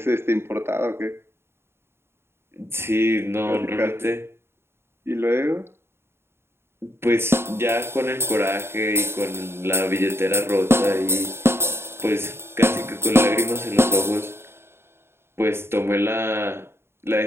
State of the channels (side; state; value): left; late; 0.12 ms